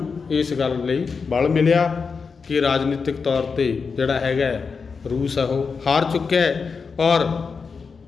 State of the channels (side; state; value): right; quieter; 5.2 dB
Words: ਇਸ ਗੱਲ ਲਈ ਬਲ ਮਿਲਿਆ ਕਿ ਰਾਜਨੀਤਿਕ ਤੌਰ 'ਤੇ ਜਿਹੜਾ ਹੈਗਾ ਰੂਸ ਆ ਉਹ ਹਾਰ ਚੁੱਕਿਆ ਹੈ। ਔਰ